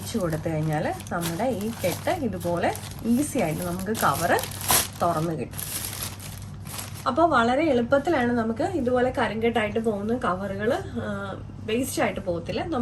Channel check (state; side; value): identical; both; correlation 1.00